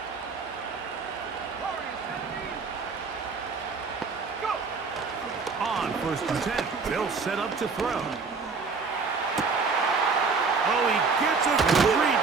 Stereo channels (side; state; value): left; quieter; 4.7 dB